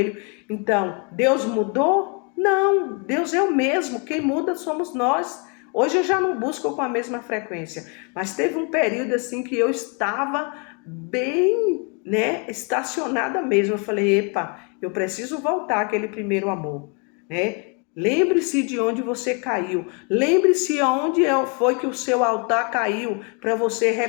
Então, Deus mudou? Não, Deus é o mesmo, quem muda somos nós. Hoje eu já não busco com a mesma frequência, mas teve um período assim que eu estava bem, né, estacionada mesmo. Eu falei, epa, eu preciso voltar àquele primeiro amor, né? Lembre-se de onde você caiu. Lembre-se onde foi que o seu altar caiu, para você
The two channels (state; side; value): quieter; right; 35.4 dB